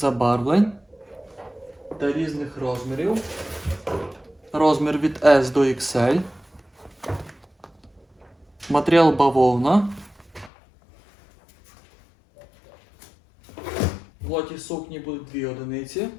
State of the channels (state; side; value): drops out; right; at 10.5 s